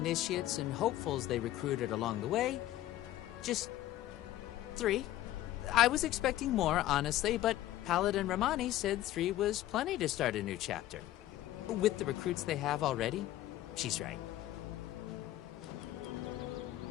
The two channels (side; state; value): right; quieter; 14.3 dB